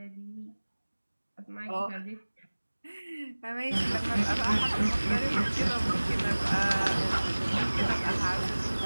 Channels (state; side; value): inverted; both; correlation -1.00